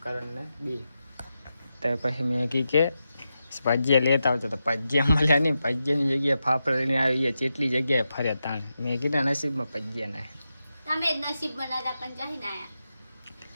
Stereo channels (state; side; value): inverted; both; correlation -0.89